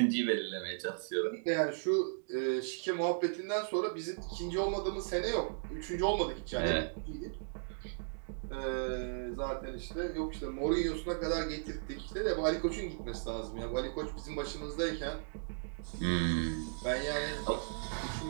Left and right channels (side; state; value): left; silent; digital silence